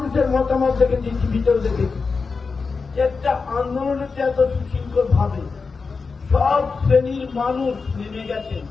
মতামত দেখেছি, ভিতরে দেখেছি, একটা আন্দোলনের এত সুশৃঙ্খল ভাবে সব শ্রেণীর মানুষ নেমে গেছেন।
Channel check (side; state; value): right; quieter; 4.7 dB